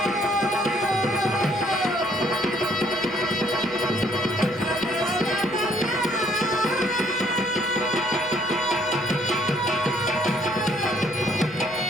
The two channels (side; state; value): left; noise; hum, 23 dB below the sound